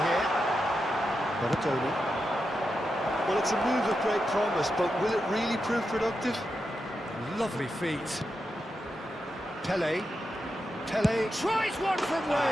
here. Tony. Well, it's a move of great promise, but will it really prove productive? Lovely feet. Pele. Pele tries one from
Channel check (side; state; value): both; normal; correlation 0.88